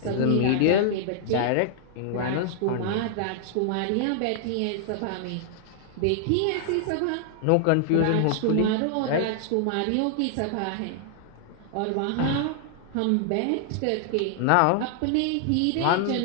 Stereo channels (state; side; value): different; both; correlation -0.01